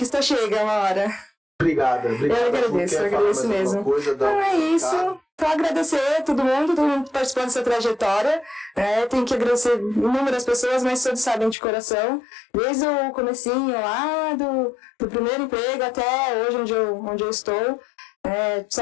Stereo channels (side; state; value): right; drops out; at 11.6 s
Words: chega uma hora. Obrigado. Eu agradeço mesmo. Então é isso. Só agradecer a todo mundo participando dessa trajetória. Tenho que agradecer inúmeras pessoas, mas todos sabem de coração. Desde o comecinho lá do primeiro emprego até hoje onde eu estou.